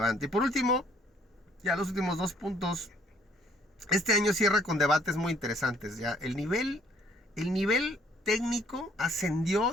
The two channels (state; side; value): normal; both; correlation 0.62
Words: Y por último, ya los últimos 2 puntos. Este año cierra con debates muy interesantes. Ya el nivel técnico ascendió